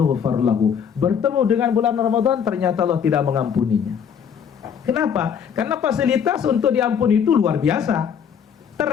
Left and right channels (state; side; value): quieter; right; 7.6 dB